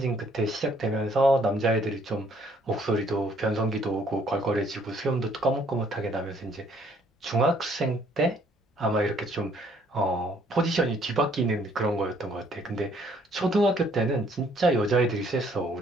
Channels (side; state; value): both; normal; correlation 0.63